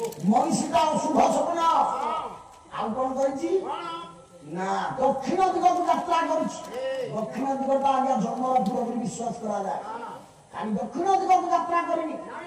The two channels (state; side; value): identical; both; correlation 1.00